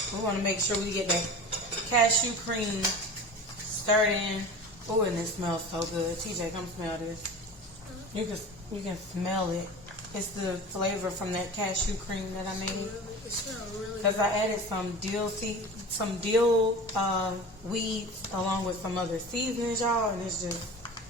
We want to make sure we get that cashew cream stirred in. Oh, and it smells so good. TJ, come smell this. You can smell it. It's the flavor from that cashew cream that I made. It smells really good. Because I added some dill weeds along with some other seasonings, y'all, and it's just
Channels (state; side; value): normal; both; correlation 0.34